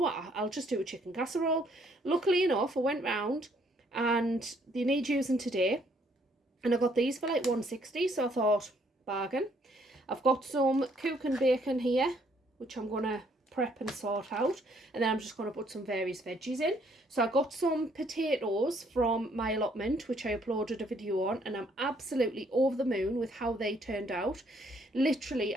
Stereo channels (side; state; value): both; normal; correlation 0.66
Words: I'll just do a chicken casserole. Luckily enough, I went round and they need using today, and I got these for like 160, so I thought, bargain. I've got some cook and bacon here, which I'm going to prep and sort out, and then I'm just going to put some various veggies in. So I got some potatoes from my allotment, which I uploaded a video on, and I'm absolutely over the moon with how they turned out. Literally,